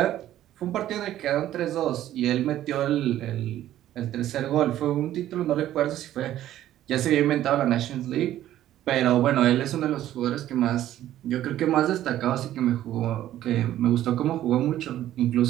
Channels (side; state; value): left; quieter; 12.8 dB